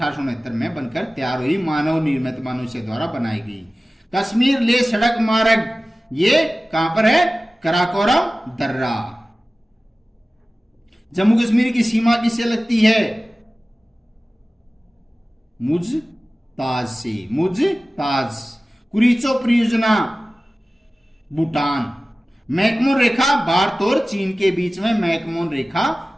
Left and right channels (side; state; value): both; normal; correlation 0.97